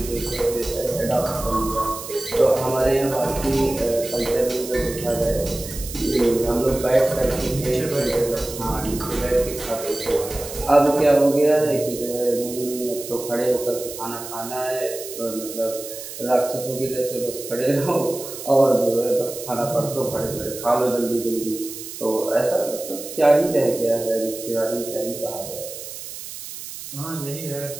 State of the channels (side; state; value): right; noise; hiss, 11 dB below the sound